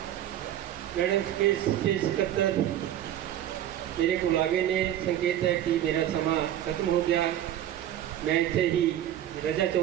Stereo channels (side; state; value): left; quieter; 11.7 dB